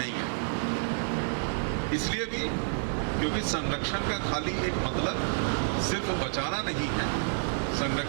है। इसलिए भी क्योंकि संरक्षण का खाली एक मतलब सिर्फ बचाना नहीं है,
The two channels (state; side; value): silent; left; digital silence